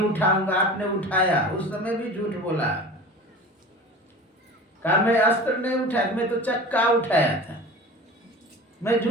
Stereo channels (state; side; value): normal; both; correlation 0.37